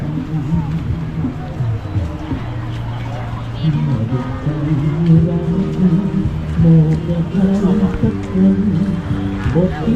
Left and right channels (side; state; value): both; identical; correlation 1.00